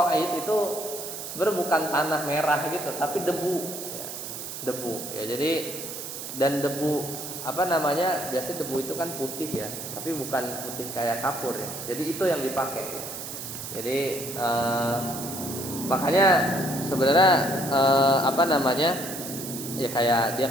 itu sebenarnya bukan tanah merah gitu, tapi debu ya. Debu ya. Jadi dan debu biasanya debu itu kan putih ya, tapi bukan putih kayak kapur ya. Jadi itu yang dipakai ya. Jadi makanya sebenarnya ya kayak dia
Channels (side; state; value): right; noise; hiss, 8 dB below the sound